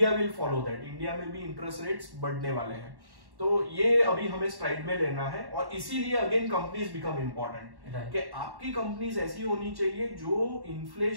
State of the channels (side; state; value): left; late; 1.1 ms